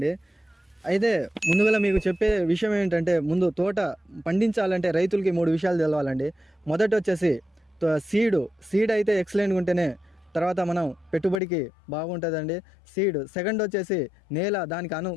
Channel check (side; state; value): right; drops out; at 11.4 s